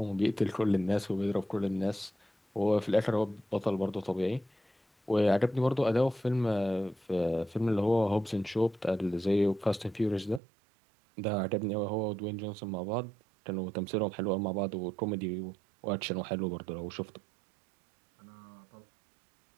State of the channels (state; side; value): drops out; left; at 10.4 s